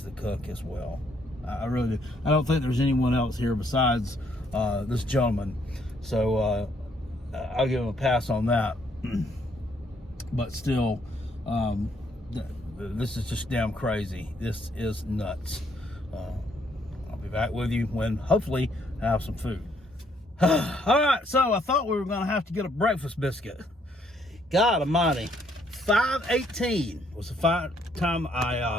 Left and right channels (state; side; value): normal; both; correlation 0.69